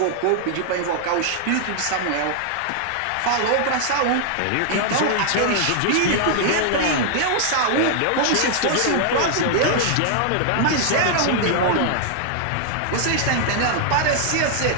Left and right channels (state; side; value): different; both; correlation 0.00